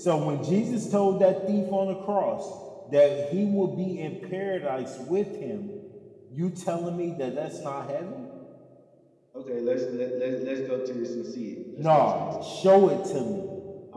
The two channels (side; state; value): both; identical; correlation 1.00